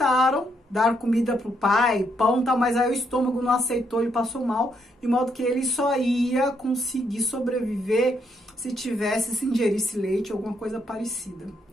dar comida pro pai, pão e tal, mas aí o estômago não aceitou, ele passou mal, de modo que ele só ia conseguir sobreviver se se ingerisse leite ou alguma coisa parecida.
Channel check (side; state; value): both; normal; correlation 0.75